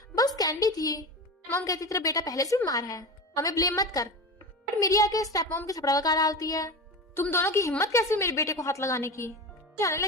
बस कैंडी थी। मॉम कहती तेरा बेटा पहले से बीमार है, हमें ब्लेम मत कर। बट मेरी आके स्टेप मॉम के थपड़ा लगा डालती है, तुम दोनों की हिम्मत कैसी मेरे बेटे को हाथ लगाने की। जाने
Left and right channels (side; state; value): both; normal; correlation 0.26